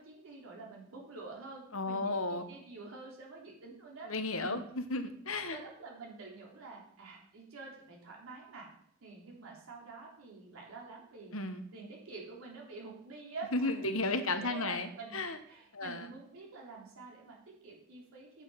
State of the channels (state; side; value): normal; both; correlation -0.08